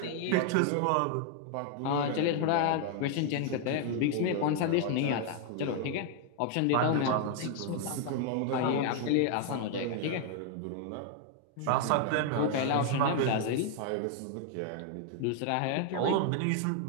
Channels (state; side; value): different; both; correlation 0.00